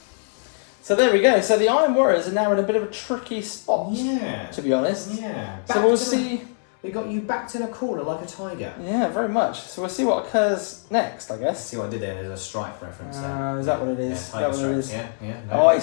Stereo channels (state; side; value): silent; right; 63 dB below the other